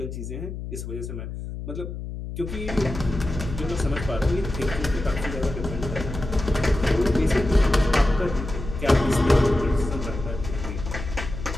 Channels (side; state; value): left; noise; hum, 8 dB below the sound